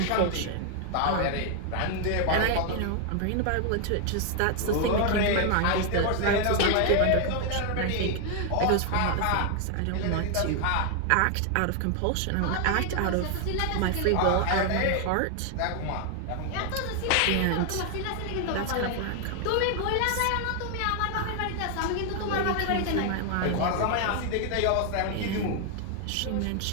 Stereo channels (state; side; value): different; both; correlation 0.00